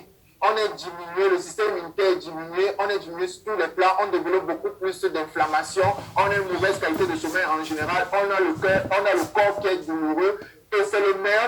On est diminué, le système immunitaire est diminué, on est diminué sur tous les plans, on développe beaucoup plus d'inflammation, on a une mauvaise qualité de sommeil en général, on a le corps qui est douloureux. Et c'est le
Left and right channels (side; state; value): both; identical; correlation 1.00